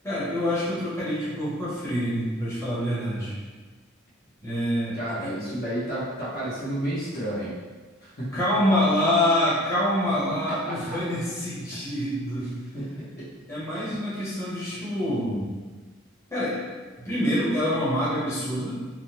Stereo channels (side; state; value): both; normal; correlation 0.49